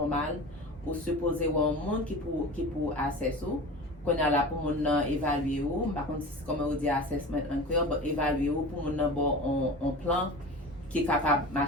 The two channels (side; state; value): both; normal; correlation 0.34